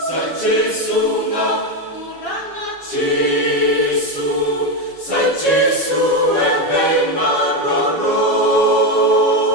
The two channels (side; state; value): right; late; 7.3 ms